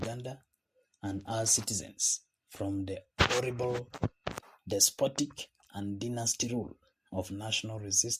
and our citizens from the horrible, despotic, and dynasty rule of national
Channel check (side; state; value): both; identical; correlation 1.00